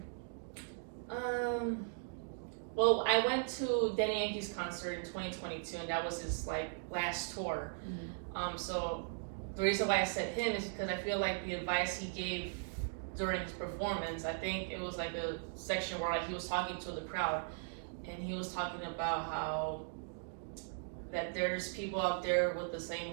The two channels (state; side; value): silent; left; digital silence